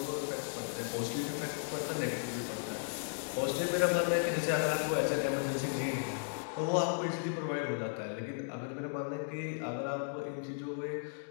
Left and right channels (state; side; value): silent; right; digital silence